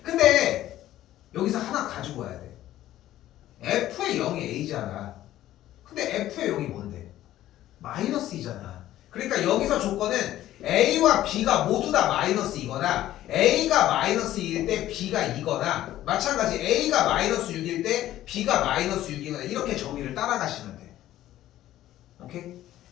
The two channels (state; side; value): quieter; right; 13.7 dB